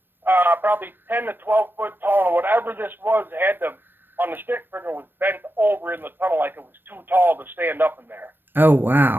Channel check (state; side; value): late; left; 0.098 ms